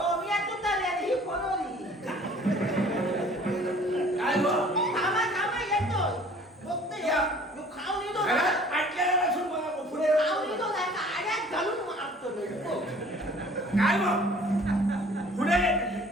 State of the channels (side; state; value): both; normal; correlation 0.51